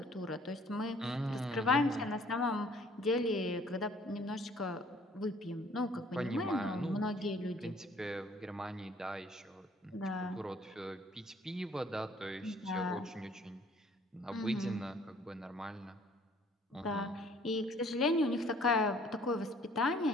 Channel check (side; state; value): both; normal; correlation 0.57